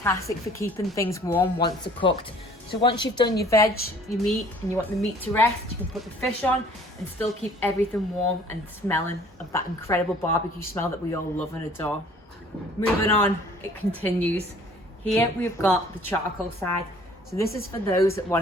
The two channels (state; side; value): normal; both; correlation 0.54